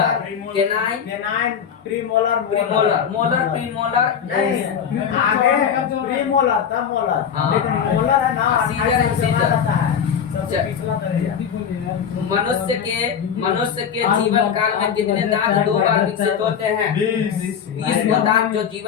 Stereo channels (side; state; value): right; quieter; 7.7 dB